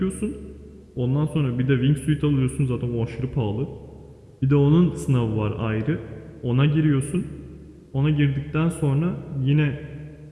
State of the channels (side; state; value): both; identical; correlation 1.00